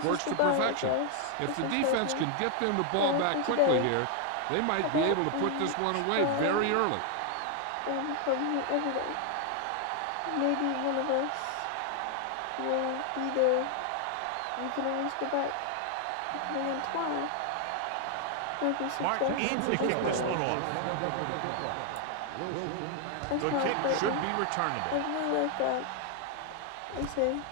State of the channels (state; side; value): different; both; correlation 0.00